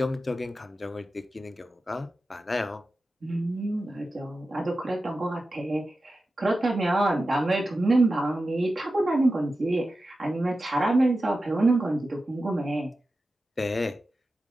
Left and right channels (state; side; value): normal; both; correlation 0.93